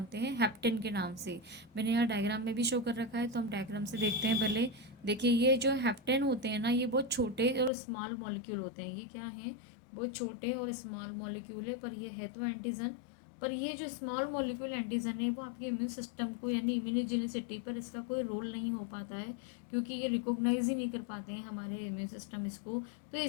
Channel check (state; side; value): drops out; right; at 7.7 s